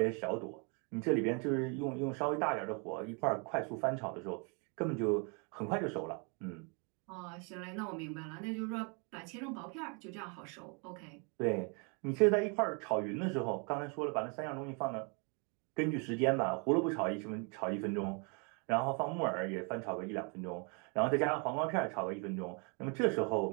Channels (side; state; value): left; quieter; 35.1 dB